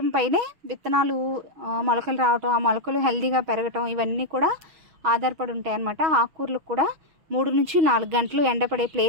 పైనే విత్తనాలు మొలకలు రావటం, ఆ మొలకలు హెల్తీగా పెరగటం ఇవన్నీ కూడా ఆధారపడి ఉంటాయి అన్నమాట. ఆకుకూరలకు కూడా 3 నుంచి 4 గంటలు ఎండపడే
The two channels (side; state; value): left; late; 6.3 ms